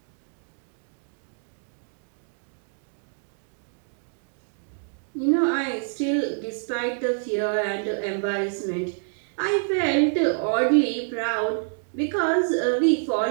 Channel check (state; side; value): silent; left; digital silence